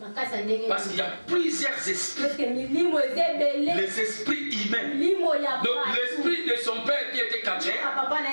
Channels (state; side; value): inverted; both; correlation -1.00